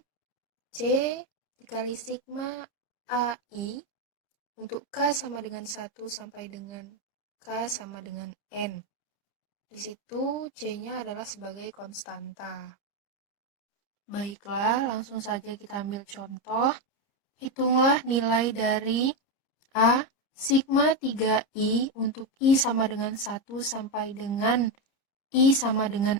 C dikali sigma AI untuk K sama dengan 1 sampai dengan K sama dengan N. Di situ C-nya adalah sebagai konstanta. Baiklah, langsung saja kita ambil contoh. Hitunglah nilai dari A sigma 3I untuk I sama dengan 1 sampai dengan I sama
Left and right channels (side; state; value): right; late; 30 ms